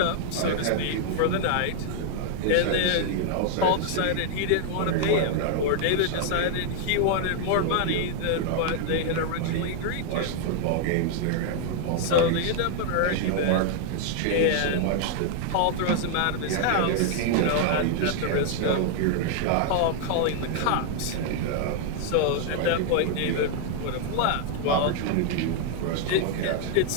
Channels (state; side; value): different; both; correlation 0.00